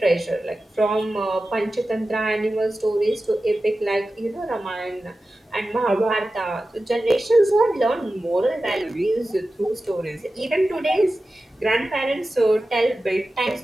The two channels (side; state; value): both; normal; correlation 0.94